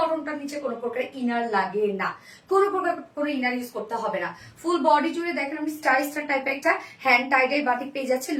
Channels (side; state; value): both; identical; correlation 1.00